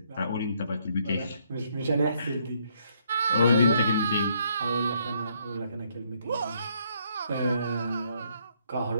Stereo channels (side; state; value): both; inverted; correlation -0.70